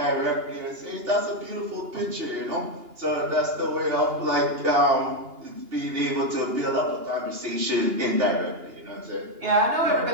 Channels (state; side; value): late; left; 2.8 ms